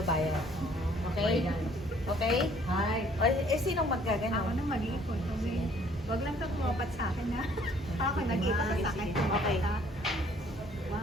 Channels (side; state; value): both; normal; correlation 0.60